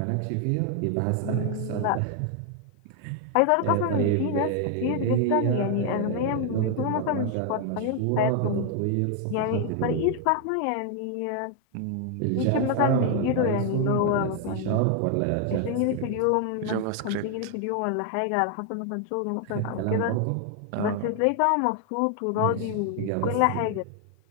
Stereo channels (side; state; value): both; different; correlation 0.00